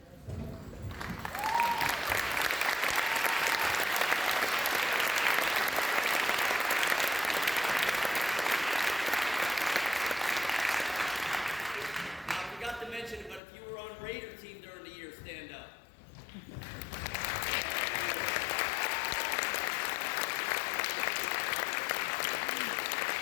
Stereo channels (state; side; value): drops out; right; at 13.4 s